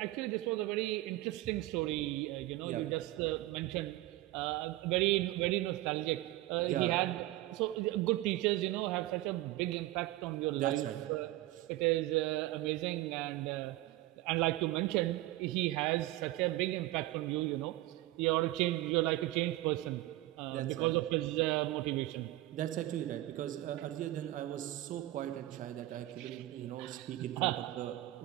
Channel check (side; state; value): left; quieter; 16.9 dB